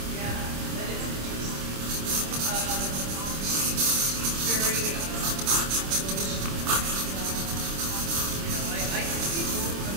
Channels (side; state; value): left; late; 26 ms